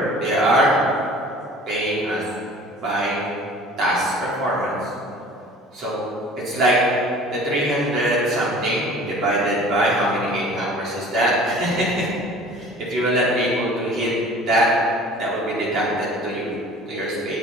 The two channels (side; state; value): both; normal; correlation 0.46